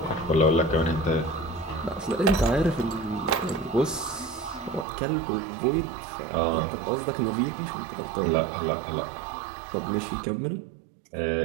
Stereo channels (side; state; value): left; drops out; at 4.9 s